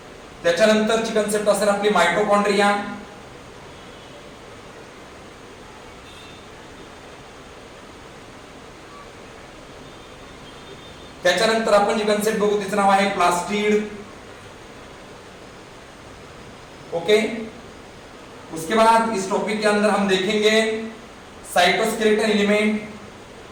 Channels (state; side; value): identical; both; correlation 1.00